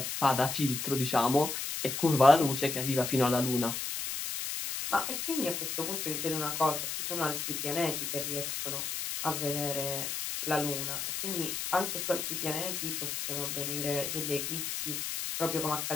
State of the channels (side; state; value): left; noise; hiss, 3 dB below the sound